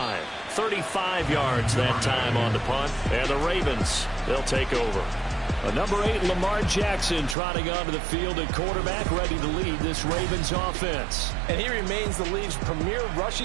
35 yards that time on the punt. And the Ravens, they'll take over. A number 8, Lamar Jackson, trotting onto the field at quarterback, ready to lead this Ravens offense. And he remains the league's premier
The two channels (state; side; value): drops out; left; at 7.4 s